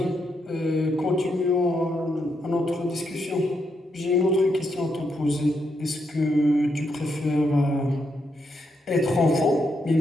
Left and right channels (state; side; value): normal; both; correlation 0.80